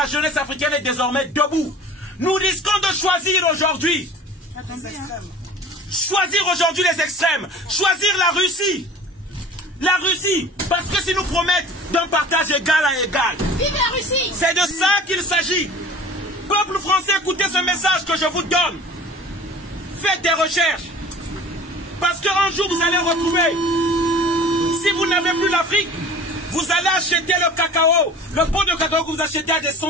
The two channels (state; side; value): normal; both; correlation 0.43